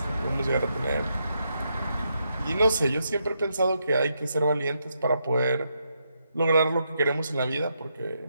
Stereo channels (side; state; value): both; inverted; correlation -0.81